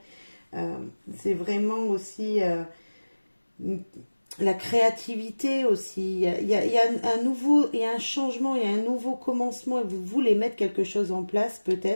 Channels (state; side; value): inverted; both; correlation -1.00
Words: C'est vraiment aussi la créativité aussi. Il y a un nouveau, il y a un changement, il y a un nouveau commencement. Vous voulez mettre quelque chose en place